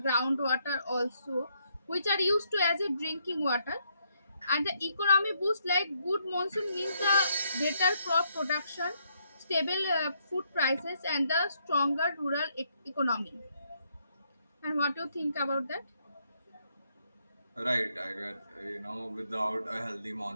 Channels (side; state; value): both; inverted; correlation -0.74